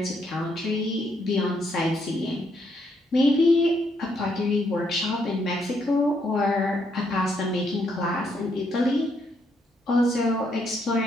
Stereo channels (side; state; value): both; normal; correlation 0.74